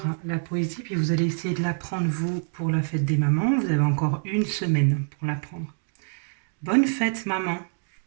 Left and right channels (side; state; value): left; silent; 61 dB below the other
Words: la poésie, puis vous allez essayer de l'apprendre, vous, pour la fête des mamans. Vous avez encore une semaine pour l'apprendre. Bonne fête, maman.